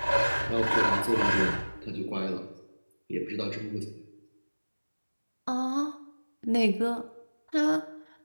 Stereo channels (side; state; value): both; inverted; correlation -1.00